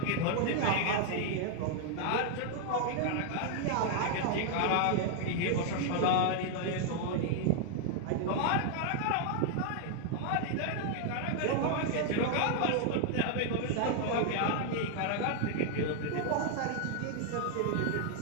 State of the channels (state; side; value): different; both; correlation 0.00